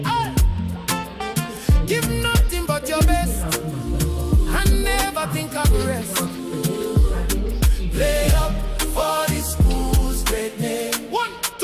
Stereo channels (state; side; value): identical; both; correlation 1.00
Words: Give nothing but your best, and never think of the rest. Play up for the school's great name. 1,